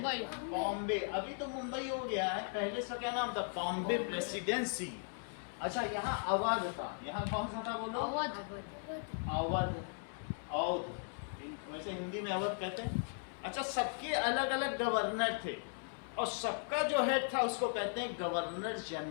बॉम्बे। अभी तो मुंबई हो गया है, पहले इसका क्या नाम था? बॉम्बे प्रेसिडेंसी। अच्छा, यहाँ अवध था, यहाँ कौन सा था बोलो? अवध। अवध, अवध, वैसे हिंदी में अवध कहते हैं। अच्छा, सबके अलग अलग गवर्नर थे, और सबका जो हेड था उसको कहते हैं गवर्नर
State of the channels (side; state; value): right; silent; 53 dB below the other